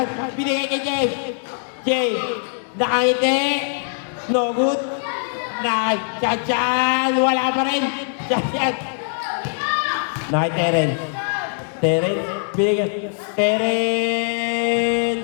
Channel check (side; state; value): right; silent; 65 dB below the other